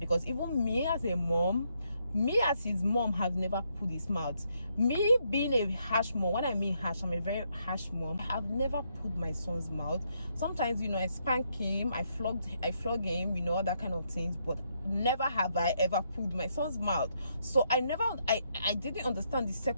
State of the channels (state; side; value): inverted; both; correlation -0.76